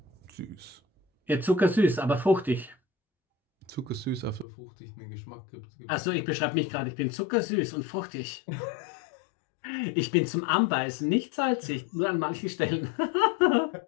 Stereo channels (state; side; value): drops out; right; at 4.5 s